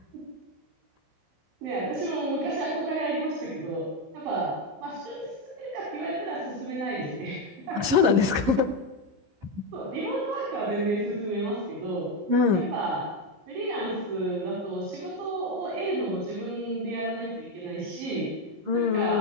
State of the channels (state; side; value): late; left; 15 ms